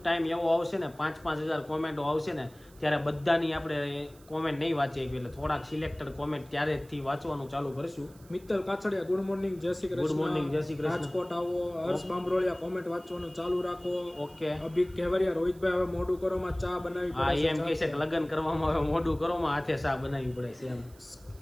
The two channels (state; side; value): noise; right; hiss, 26 dB below the sound